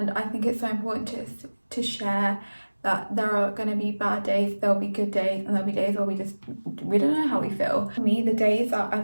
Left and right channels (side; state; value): both; inverted; correlation -1.00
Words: I think it's so important to share that there are going to be bad days, there'll be good days, and there'll be days where we don't know how we feel. For me, the days that I